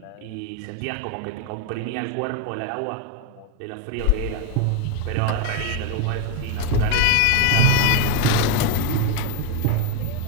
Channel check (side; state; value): both; different; correlation 0.02